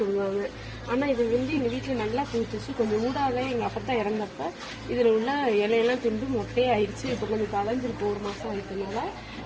ஆனால் இது வந்து எங்கள் வீட்டில் நல்லா பூத்துச்சு. கொஞ்சம் ஊடாத எங்கள் அப்பா தான் இறந்தப்ப இதில் உள்ள இலையெல்லாம் திண்டு மொட்டையே ஆயிடுச்சு. இப்போ கொஞ்சம் கலைஞ்சிருக்கு, 1 மாதம் ஆயிட்டனால.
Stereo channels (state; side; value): identical; both; correlation 1.00